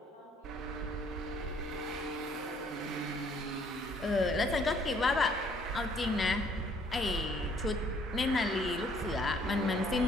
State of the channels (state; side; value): normal; both; correlation 0.62